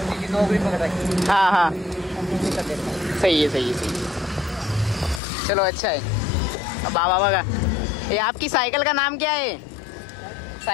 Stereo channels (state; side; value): drops out; right; at 5.2 s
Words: सी नौकरी पकड़ रखी. हाँ सही है. चलो अच्छा है. अब बाबा बघा ये आपकी साइकिल का नाम क्या है.